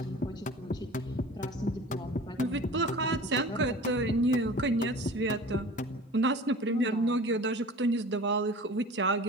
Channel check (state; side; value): normal; both; correlation 0.40